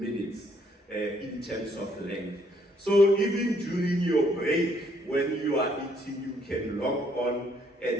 in terms of length. So even during your break, when you are eating, you can log on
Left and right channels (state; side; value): normal; both; correlation 0.68